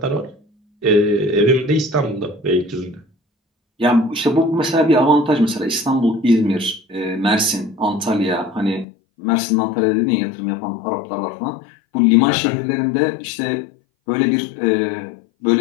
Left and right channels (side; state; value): right; drops out; at 8.8 s